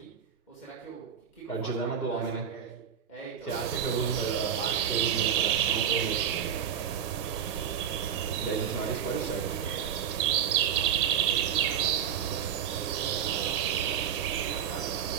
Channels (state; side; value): quieter; left; 8.5 dB